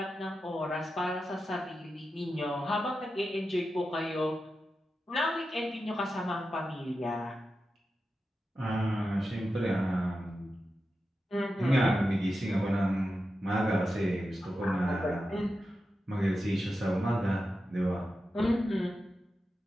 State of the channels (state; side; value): normal; both; correlation 0.91